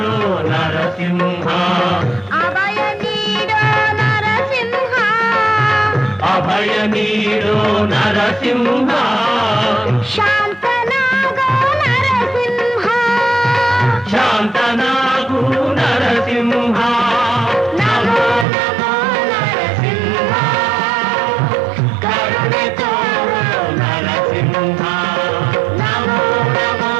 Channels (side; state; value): left; drops out; at 18.4 s